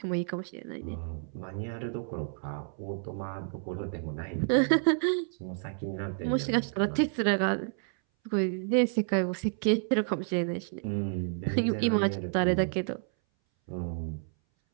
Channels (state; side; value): silent; left; 58 dB below the other